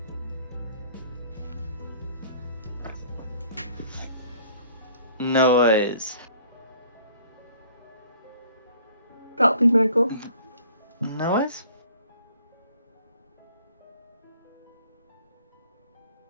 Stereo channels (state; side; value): inverted; both; correlation -0.55